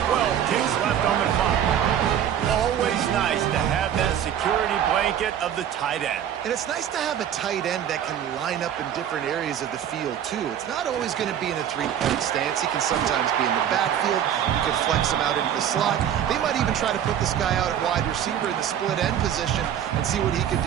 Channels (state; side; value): quieter; left; 9.8 dB